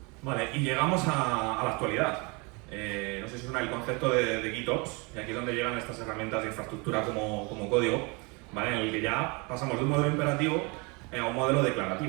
Vale, y llegamos a la actualidad. No sé si suena el concepto de GitOps, y aquí es donde llegan estas herramientas de infraestructura como código, ¿vale? En el que ya pasamos de un modelo imperativo a un modelo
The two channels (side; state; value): left; quieter; 29.6 dB